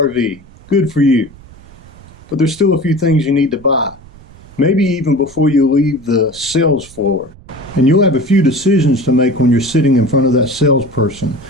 good for you. But there's still a few things you need to buy, maybe even before you leave the sales floor. And you'll have a few decisions to make when you're sitting in front of that salesperson.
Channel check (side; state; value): right; noise; rumble, 22 dB below the sound